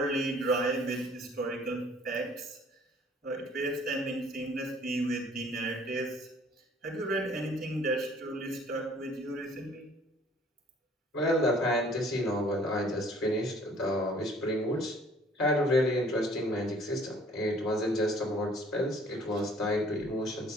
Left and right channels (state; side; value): normal; both; correlation 0.56